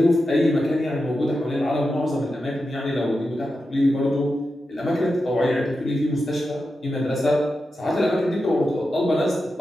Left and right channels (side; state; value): both; normal; correlation 0.90